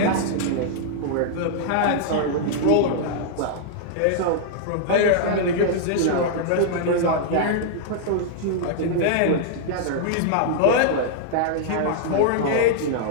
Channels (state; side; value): different; both; correlation -0.01